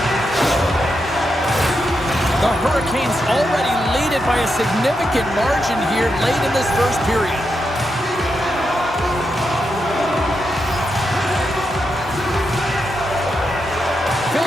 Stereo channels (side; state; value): both; normal; correlation 0.85